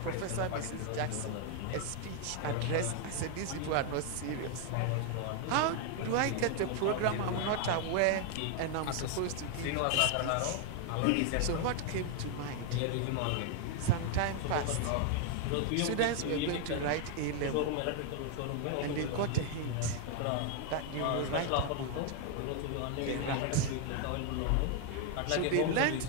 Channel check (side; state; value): both; different; correlation 0.00